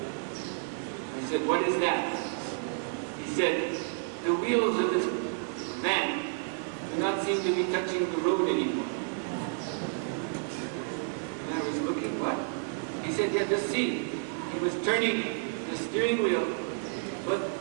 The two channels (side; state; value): left; silent; 57 dB below the other